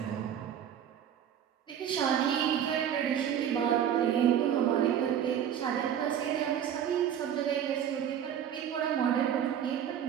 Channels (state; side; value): quieter; left; 9.4 dB